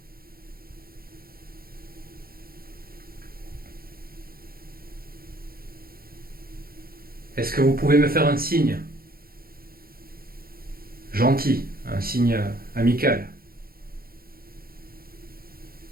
Est-ce que vous pouvez me faire un signe? Gentil, un signe amical.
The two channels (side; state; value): left; late; 0.43 ms